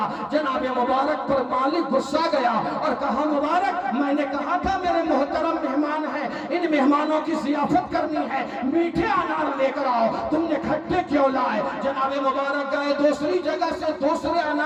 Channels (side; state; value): both; identical; correlation 1.00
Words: جناب مبارک پر مالک غصہ گیا اور کہا، مبارک میں نے کہا تھا میرے محترم مہمان ہیں، ان مہمانوں کی ضیافت کرنی ہے، میٹھے انار لے کر آؤ، تم نے کھٹے کیوں لائے؟ جناب مبارک گئے، دوسری جگہ سے دوسرے